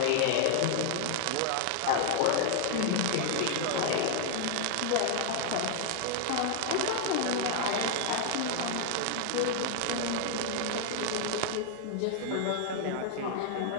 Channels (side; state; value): both; different; correlation 0.00